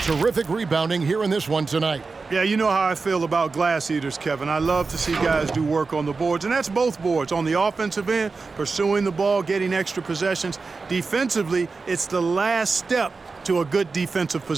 terrific rebounding here in this one tonight. Yeah, you know how I feel about glass eaters, Kevin. I love to see guys do work on the boards, and that's both boards. On the offensive end, pursuing the ball, getting extra possessions. Defensively, it's the last step to a good defensive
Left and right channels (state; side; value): quieter; left; 4.3 dB